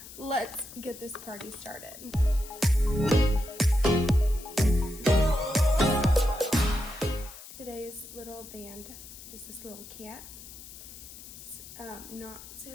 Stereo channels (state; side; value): noise; left; hiss, 15 dB below the sound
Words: Let's get this party started. Today's little band is this little cat. It's not